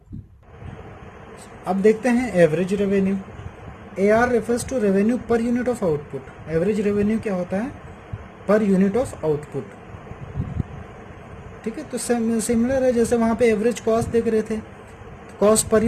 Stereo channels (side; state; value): both; identical; correlation 1.00